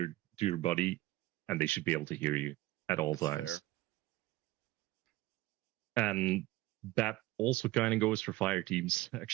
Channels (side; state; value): left; quieter; 17.9 dB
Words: your buddy, and they should be able to hear you at all times. Fair. And that also kind of goes for fire teams,